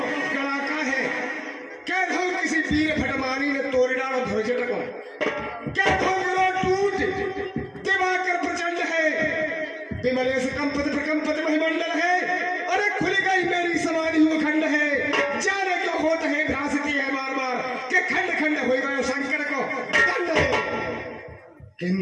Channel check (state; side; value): identical; both; correlation 1.00